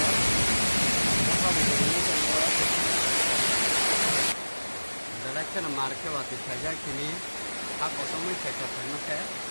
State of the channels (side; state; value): both; inverted; correlation -1.00